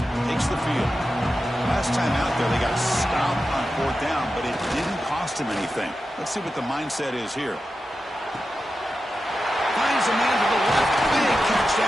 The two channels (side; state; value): both; normal; correlation 0.91